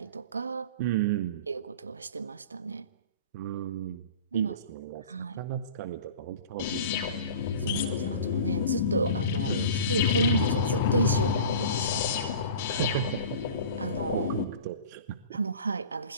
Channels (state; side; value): inverted; both; correlation -0.38